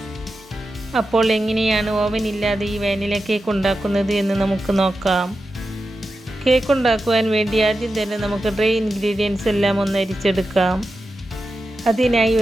അപ്പോൾ എങ്ങനെയാണ് ഓവൻ ഇല്ലാതെ ഈ വാനില കേക്ക് ഉണ്ടാക്കുന്നത് എന്ന് നമുക്ക് നോക്കാം. കേക്ക് ഉണ്ടാക്കുവാൻ വേണ്ടി ആദ്യം തന്നെ നമുക്ക് ഡ്രൈ ഇൻഗ്രീഡിയൻസ് എല്ലാം ഒന്ന് അരിച്ചെടുക്കാം. അതിനായി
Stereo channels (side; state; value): both; normal; correlation 0.91